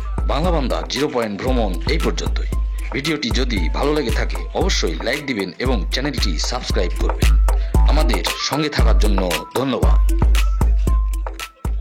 বাংলা বান্দা 0 পয়েন্ট ভ্রমণ এই পর্যন্তই। ভিডিওটি যদি ভালো লেগে থাকে অবশ্যই লাইক দিবেন এবং চ্যানেলটি সাবস্ক্রাইব করবেন। আমাদের সঙ্গে থাকার জন্য ধন্যবাদ।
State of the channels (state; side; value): identical; both; correlation 1.00